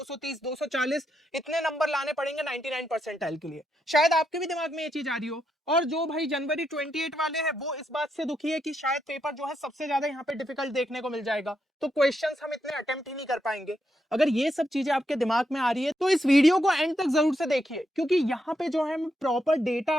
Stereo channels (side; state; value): both; normal; correlation 0.81